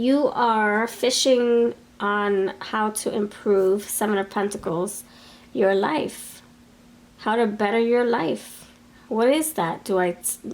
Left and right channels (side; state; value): both; identical; correlation 1.00